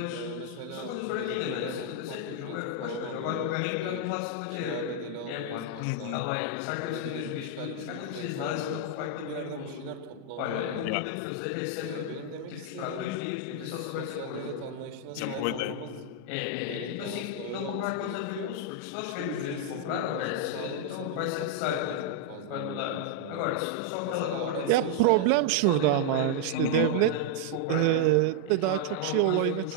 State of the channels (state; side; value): different; both; correlation -0.01